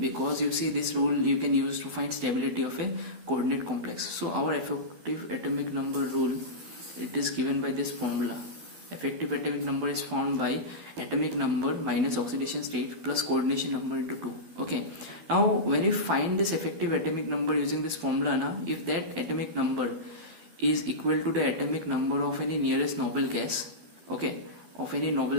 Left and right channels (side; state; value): left; late; 12 ms